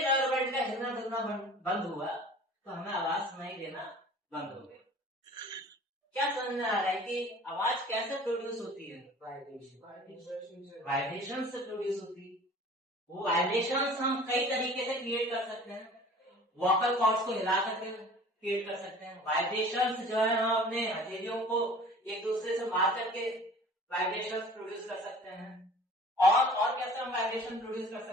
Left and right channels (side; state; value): both; normal; correlation 0.46